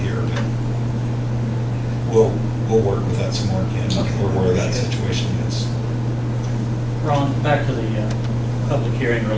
here, but we'll work with that some more, Ken, or where that situation is. Ron, back to the public hearing or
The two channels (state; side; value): identical; both; correlation 1.00